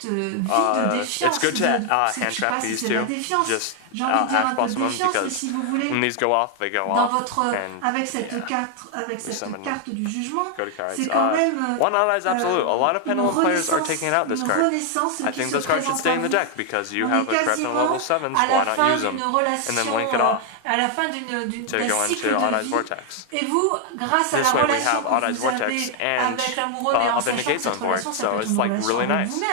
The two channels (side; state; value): both; different; correlation 0.00